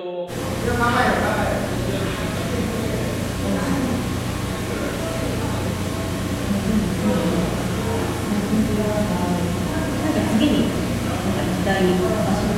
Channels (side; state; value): both; identical; correlation 1.00